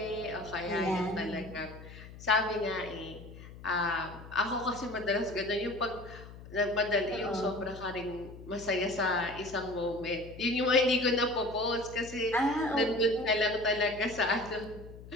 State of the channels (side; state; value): left; noise; hum, 16 dB below the sound